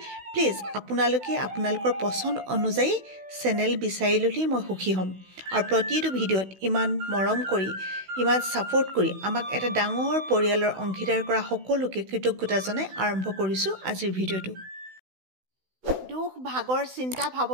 প্লিজ আপোনালোকে আপোনালোকৰ পচন্দ অনুযায়ী চেনেল বিচাৰি ল'লেই মই সুখী হ'ম। আৰু প্ৰতিটো ভিডিঅ'ত ইমান মৰম কৰি, ইমান ছাপোৰ্ট কৰি আমাক এটা ডাঙৰ পৰিয়ালৰ অংশীদাৰ কৰা সকলোকে কৃতজ্ঞতা জনাই আৰম্ভ কৰিছোঁ আজিৰ ভিডিঅ'টো। দুখ ভাগৰ চিন্তা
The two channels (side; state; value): left; late; 16 ms